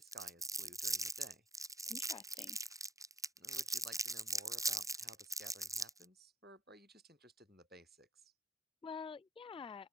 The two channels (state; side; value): normal; both; correlation 0.52